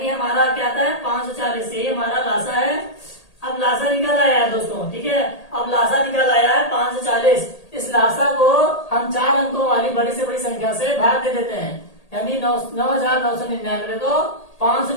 हमारा क्या आता है 540। ये हमारा लासा है। अब लासा निकल आया है दोस्तों। ठीक है, अब लासा निकल आया है 540। इस लासा को हम 4 अंकों वाली बड़ी से बड़ी संख्या से भाग दे देते हैं, यानी 9999 को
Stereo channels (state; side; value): late; right; 1.8 ms